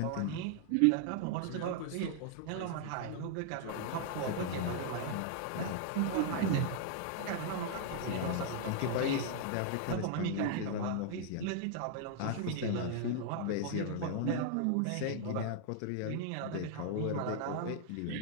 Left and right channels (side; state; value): both; different; correlation -0.01